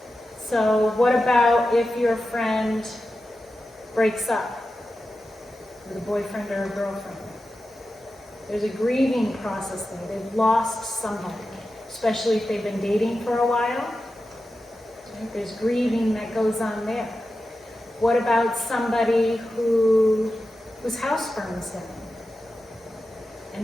So what about if your friend breaks up with a boyfriend or a girlfriend? There's a grieving process there. They've lost somebody, especially if they've been dating for a while. Right? There's grieving that goes on there. What about somebody whose house burns down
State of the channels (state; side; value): normal; both; correlation 0.92